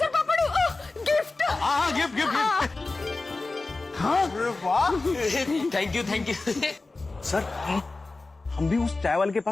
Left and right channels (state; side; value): quieter; right; 3.4 dB